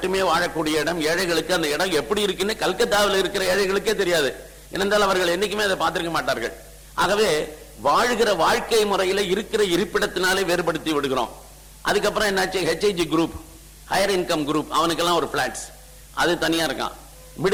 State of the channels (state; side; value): identical; both; correlation 1.00